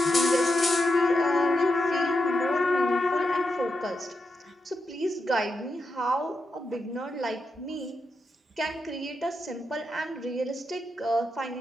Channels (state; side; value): normal; both; correlation 0.85